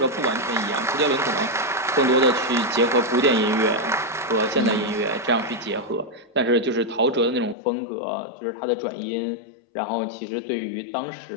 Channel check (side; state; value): right; drops out; at 7.6 s